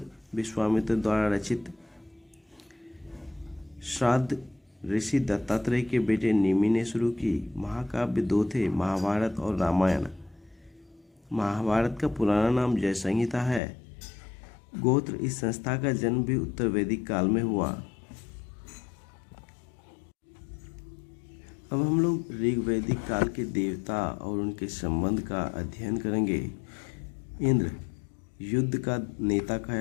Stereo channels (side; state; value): right; drops out; at 13.6 s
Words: विश्वामित्र द्वारा रचित। श्राद्ध ऋषि दत्तात्रेय के बेटे निमि ने शुरू की। महाकाव्य दो थे, महाभारत और रामायण। महाभारत का पुराना नाम जय संहिता है। गोत्र, इस संस्था का जन्म भी उत्तर वैदिक काल में हुआ। अब हम लोग ऋग वैदिक काल के देवता और उनके संबंध का अध्ययन करेंगे। इंद्र युद्ध का नेता कहा